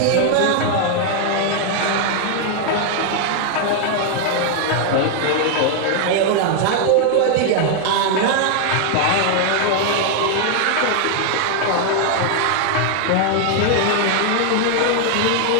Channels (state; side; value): different; both; correlation 0.00